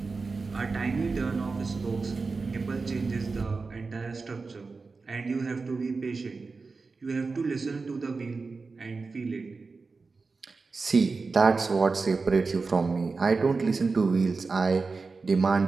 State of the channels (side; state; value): left; quieter; 4.2 dB